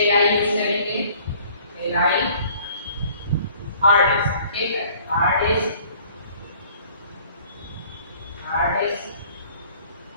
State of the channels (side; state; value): both; inverted; correlation -0.54